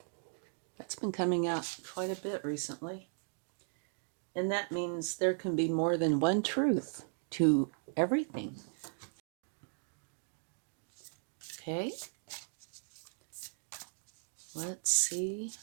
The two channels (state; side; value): silent; left; digital silence